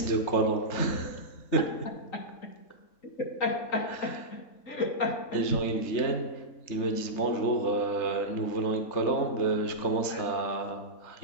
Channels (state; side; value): late; right; 3.3 ms